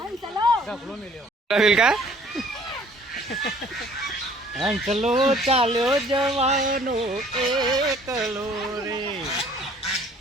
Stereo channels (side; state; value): both; normal; correlation 0.55